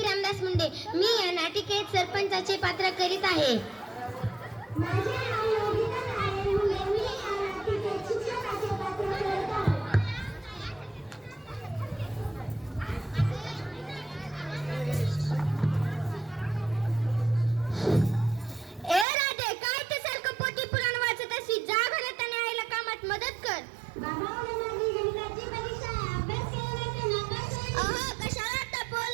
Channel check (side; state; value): left; drops out; at 19.1 s